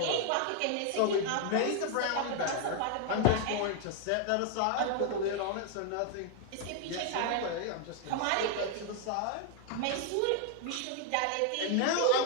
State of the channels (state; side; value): different; both; correlation 0.00